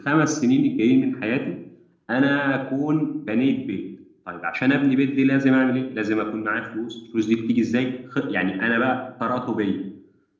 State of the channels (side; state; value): both; identical; correlation 1.00